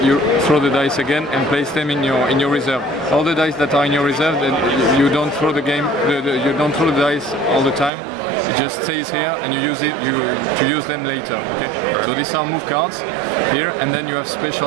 You throw the dice again and place them in your reserve. All the dice that are in your reserve, then you don't throw the game. You don't throw the dice all the time. It just stays here, and you use it to use them later. Okay. So these are move cards here, and then you have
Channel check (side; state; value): left; drops out; at 7.9 s